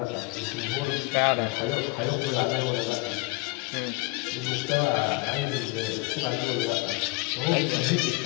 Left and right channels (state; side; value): quieter; right; 23.8 dB